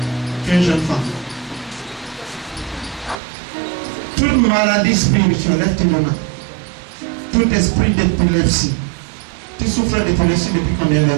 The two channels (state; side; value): drops out; left; at 3.2 s